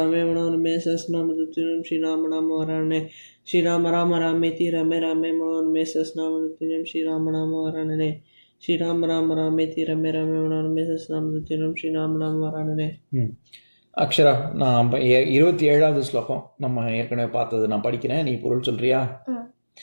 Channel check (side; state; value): both; inverted; correlation -1.00